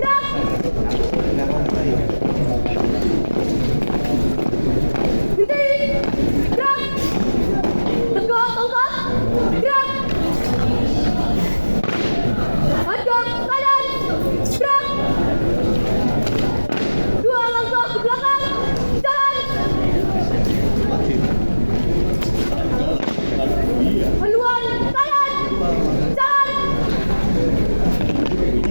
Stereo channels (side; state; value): both; inverted; correlation -1.00